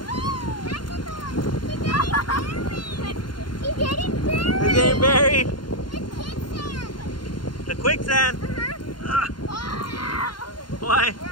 He's getting buried. He's getting buried. It's quicksand. The quicksand. Uh-huh. Why? Where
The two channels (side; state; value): right; late; 0.71 ms